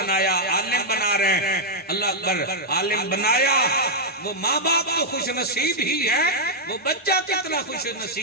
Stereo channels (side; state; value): both; normal; correlation -0.04